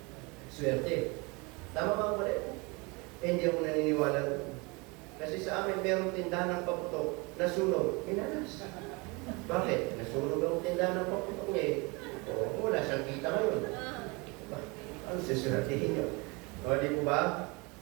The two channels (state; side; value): quieter; left; 27.6 dB